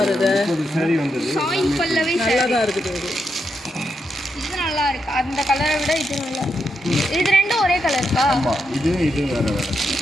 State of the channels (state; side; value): normal; both; correlation 0.83